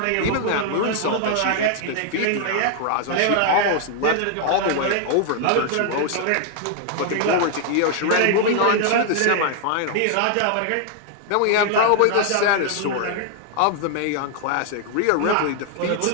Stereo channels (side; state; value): both; different; correlation 0.00